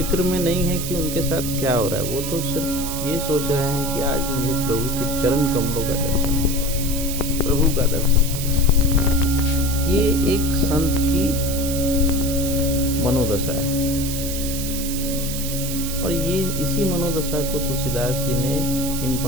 में नहीं है कि उनके साथ क्या हो रहा है, वो तो सिर्फ ये सोच रहे हैं कि आज मुझे प्रभु के चरण कमलों का दर्शन होगा, प्रभु का दर्शन होगा। ये एक संत की मनोदशा है और ये इसी मनोदशा को तुलसीदास जी ने इन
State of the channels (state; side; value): noise; right; hiss, 6 dB below the sound